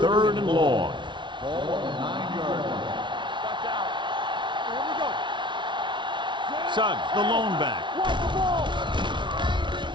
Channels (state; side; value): late; left; 0.23 ms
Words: Third and long. Watch out. Here we go. Suggs, the lone back. Watch the ball.